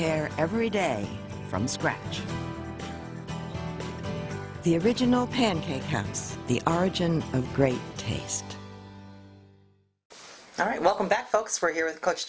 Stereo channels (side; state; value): both; identical; correlation 1.00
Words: every day from scratch. The original Pancake House, the origin of great taste. All right, welcome back, folks. We're here with Coach